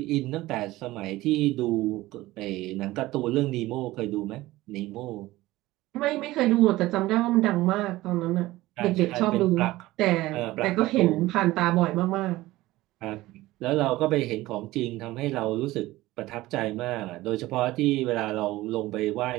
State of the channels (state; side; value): quieter; left; 17.8 dB